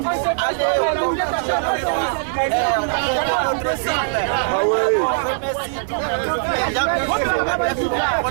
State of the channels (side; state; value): left; silent; digital silence